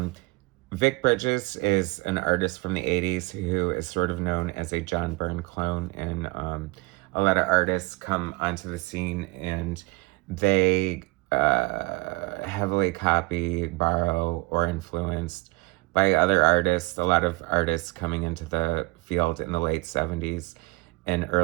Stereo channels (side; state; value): left; quieter; 25.2 dB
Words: Vic Bridges is an artist from the 80s who is sort of known as a John Byrne clone, and a lot of artists come onto the scene and they heavily copy, borrow, or influenced by other artists. A lot of artists coming into the field in the late 70s and